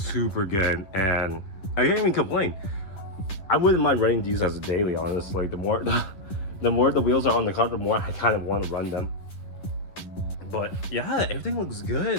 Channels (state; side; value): late; right; 10 ms